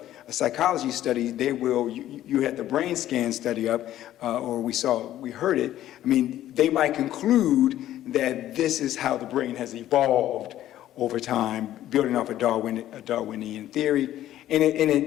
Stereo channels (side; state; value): right; quieter; 12.9 dB